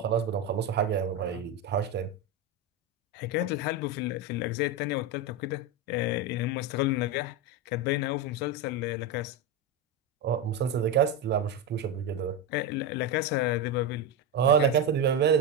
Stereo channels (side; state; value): both; normal; correlation 0.12